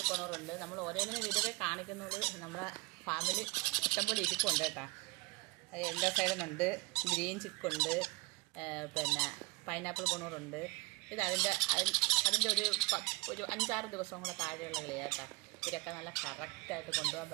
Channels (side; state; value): left; quieter; 25.4 dB